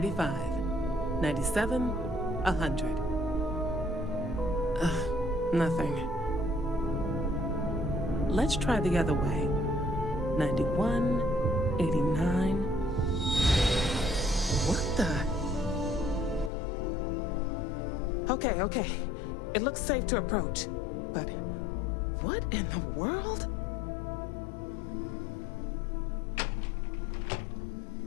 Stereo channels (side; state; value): right; drops out; at 16.5 s